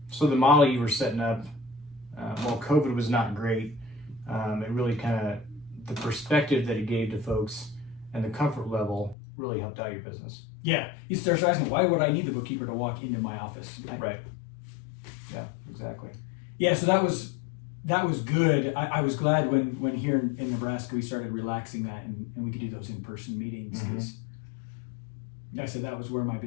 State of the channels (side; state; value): right; drops out; at 9.2 s